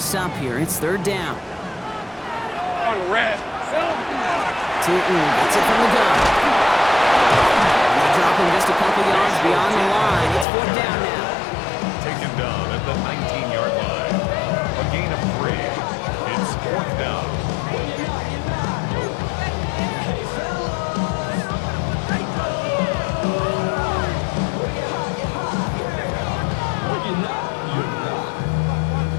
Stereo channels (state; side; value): drops out; right; at 10.5 s